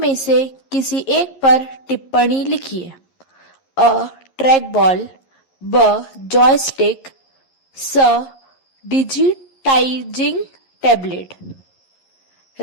से किसी एक पर टिप्पणी लिखिए। अ, ट्रैक बॉल, ब, जॉयस्टिक, स, digitising tablet.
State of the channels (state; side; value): late; right; 11 ms